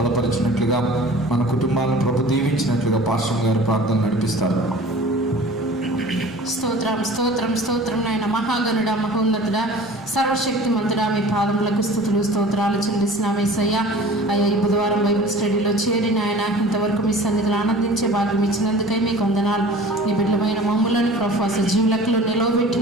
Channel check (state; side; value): noise; right; rumble, 28 dB below the sound